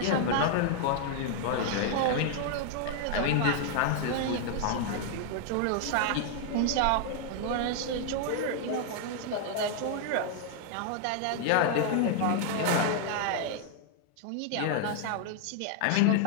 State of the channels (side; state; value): both; different; correlation 0.00